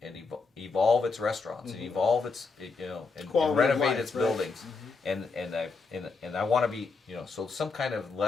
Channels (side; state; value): right; quieter; 4.4 dB